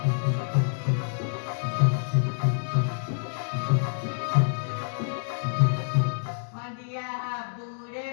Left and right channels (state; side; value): silent; right; digital silence